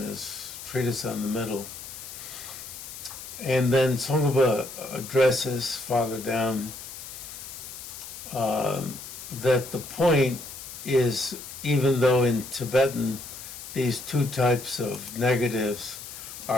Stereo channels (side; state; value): left; noise; hiss, 12 dB below the sound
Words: treatise on the middle. And then Tsongkhapa addresses farther down that the point is, even though in Tibetan these two types of negatives